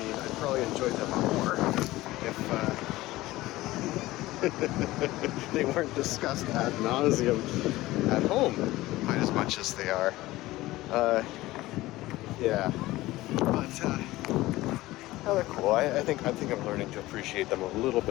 I'd probably enjoy them more if they weren't discussed ad nauseum at home quite as much as they are. Yeah, but yeah, they're cool. I think I'm learning to appreciate them a little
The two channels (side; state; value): right; quieter; 17.8 dB